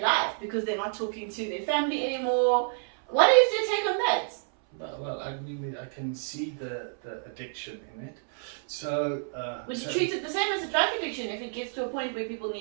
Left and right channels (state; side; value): silent; left; 59 dB below the other